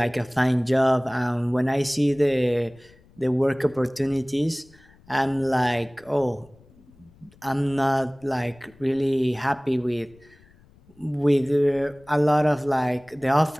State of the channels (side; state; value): left; noise; rumble, 28 dB below the sound